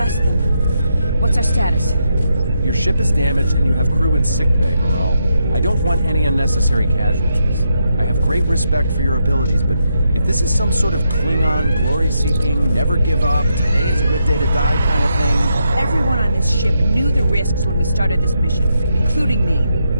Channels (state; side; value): inverted; both; correlation -0.81